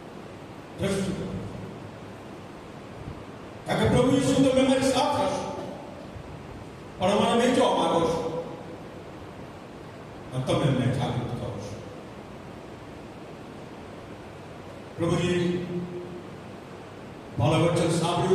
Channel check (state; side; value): identical; both; correlation 1.00